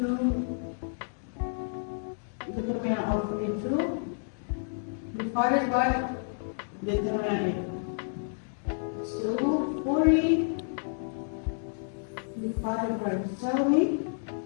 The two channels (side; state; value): right; silent; digital silence